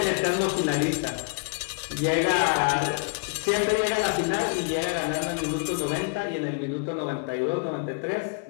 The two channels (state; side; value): quieter; right; 33.9 dB